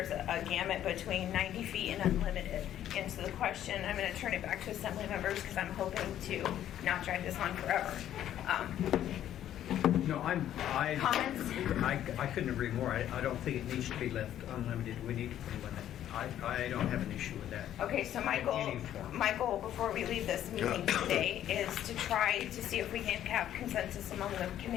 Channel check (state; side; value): quieter; right; 11.4 dB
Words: gamut between 90 feet and unlimited. And so the question, I'm going to turn it back to Assembly members because I'm hoping to not drag this on forever. No, Comments? I couldn't agree more. I don't think it needs to be left unlimited. We need to put a limit. I don't have an issue with that. Okay, so my goal before we leave this meeting today is to try to see if we can have consensus among the